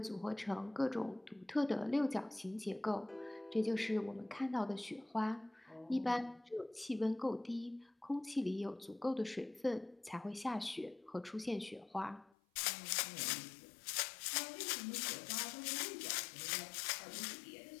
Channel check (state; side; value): drops out; right; at 12.4 s